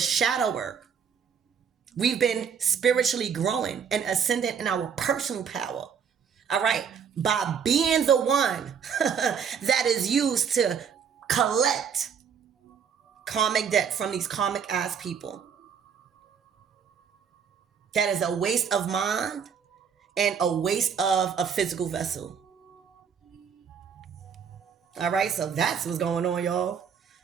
work. We've been spiritually growing and ascending in our personal power. All right? By being the one that is used to collect karmic debt from these karmic ass people. That is a waste of mind and a waste of a physical vessel. All right, so that's what's going on, y'all.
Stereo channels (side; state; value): left; quieter; 7.1 dB